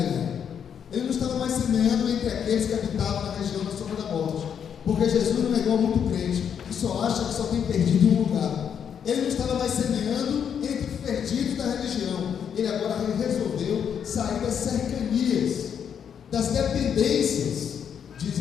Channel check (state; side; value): quieter; right; 8.0 dB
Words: Ele não estava mais semeando entre aqueles que habitavam na região da sombra da morte, porque Jesus não é igual a muito crente, que só acha que só tem perdido em um lugar. Ele não estava mais semeando entre os perdidos da religião. Ele agora resolveu sair das cercanias, das dependências de